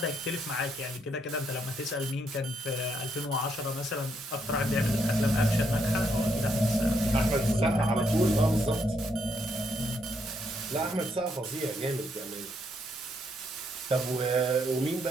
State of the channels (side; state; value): both; normal; correlation 0.75